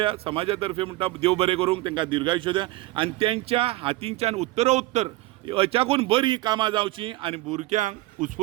समाजा तर्फे म्हणटा देव बरें करूंक तांकां दीर्घायुष्य द्या आनी तेंच्या हातींच्यान उत्तरोत्तर हेच्याकून बरी कामां जावची आनी भुरग्यांक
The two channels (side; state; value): left; quieter; 18.8 dB